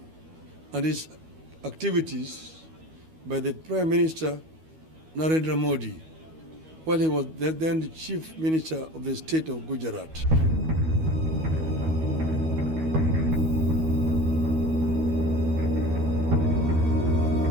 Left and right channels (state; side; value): late; left; 12 ms